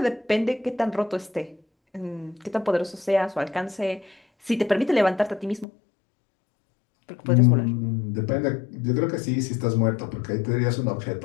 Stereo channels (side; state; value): right; drops out; at 5.7 s